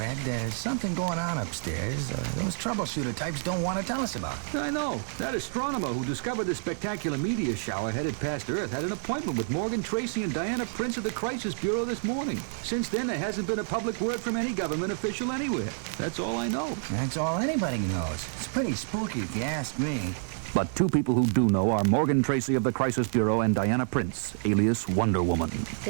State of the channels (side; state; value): left; silent; 59 dB below the other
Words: There's something going on upstairs. Those troubleshooter types don't want to tell us about it. I know. That astronomer who discovered the spectacular meteor shower headed past Earth had an appointment with Morgan Tracy and Diana Prince of the Crisis Bureau this morning. Since then, there hasn't been a public word from any government official anywhere. That's all I know. That's all anybody knows. It's pretty spooky if you ask me. But two people who do know are Morgan Tracy of the Crisis Bureau and Diana Prince, alias Wonder Woman.